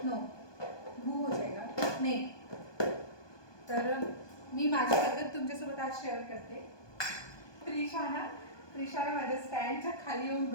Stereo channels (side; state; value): right; late; 1.2 ms